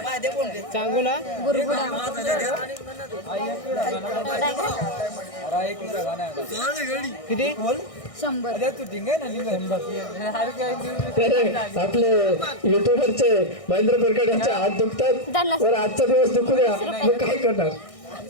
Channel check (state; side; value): late; right; 1.6 ms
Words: सांगू ना. किती 100. आपले युट्यूबरचे महेंद्र बोरकर यांचे हात दुखतात, तर आजचा दिवस दुखू द्या, मी काय करणार.